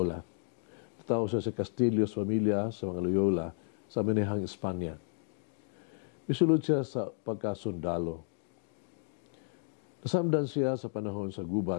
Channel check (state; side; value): silent; right; digital silence